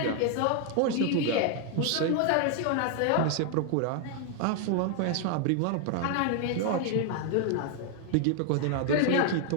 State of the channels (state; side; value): different; both; correlation 0.00